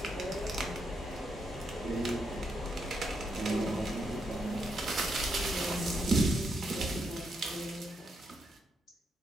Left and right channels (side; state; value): both; normal; correlation 0.79